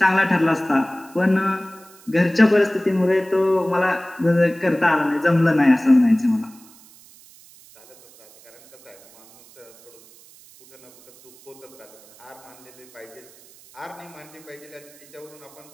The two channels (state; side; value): noise; right; hiss, 24 dB below the sound